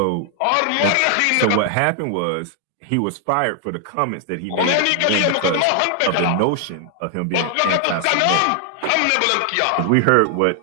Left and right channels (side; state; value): both; different; correlation 0.00